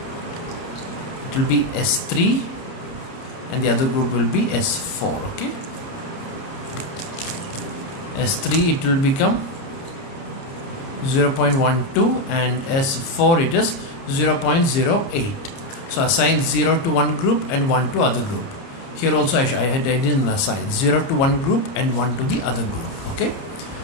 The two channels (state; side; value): late; right; 30 ms